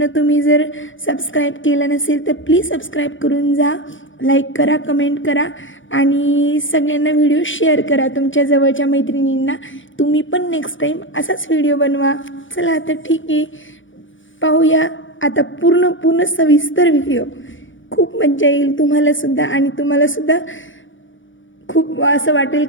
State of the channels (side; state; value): right; late; 0.56 ms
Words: तुम्ही जर सबस्क्राईब केलं नसेल तर प्लीज सबस्क्राईब करून जा. लाईक करा, कमेंट करा आणि सगळ्यांना व्हिडिओ शेअर करा तुमच्या जवळच्या मैत्रिणींना. तुम्ही पण नेक्स्ट टाईम असाच व्हिडिओ बनवा. चला तर ठीक आहे, पाहूया आता पूर्ण सविस्तर व्हिडिओ. खूप मज्जा येईल तुम्हालासुद्धा आणि तुम्हालासुद्धा खूप असं वाटेल